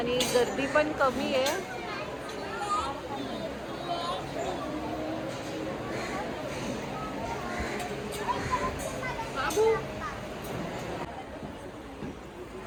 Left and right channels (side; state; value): both; identical; correlation 1.00